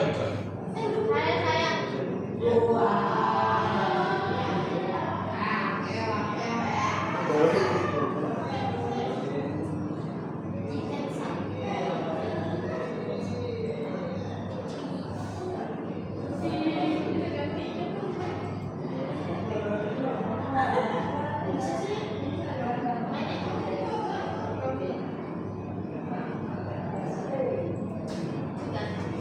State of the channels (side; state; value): both; identical; correlation 1.00